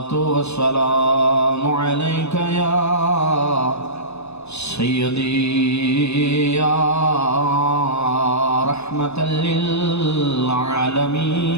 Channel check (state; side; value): late; right; 0.80 ms